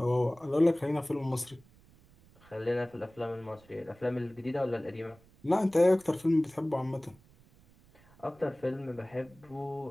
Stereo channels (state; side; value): noise; right; rumble, 27 dB below the sound